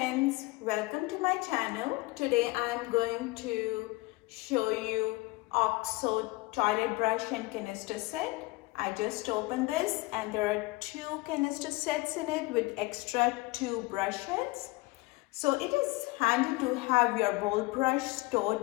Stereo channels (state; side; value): quieter; right; 22.6 dB